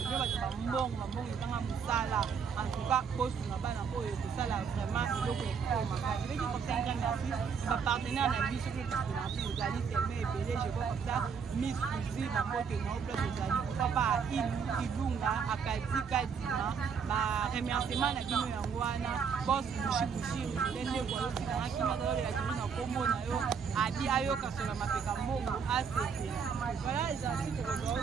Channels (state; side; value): quieter; left; 6.4 dB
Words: va faire bon musala en tout cas poste na bana ko et ça là vraiment le ko ma ka je vais dire comme ça ma partenaire na vie sur le partenaire vous allez fermer et belé je vois comme ça miss aussi ma côté non plus vous allez papa ilunga akadi kadima ba remerciement na kino ya ngwana boss mushibushi ndende kwa yosi na kima dole la kino na kombo na yo abi ayo kasola mapeka mbongo asete voilà les articles que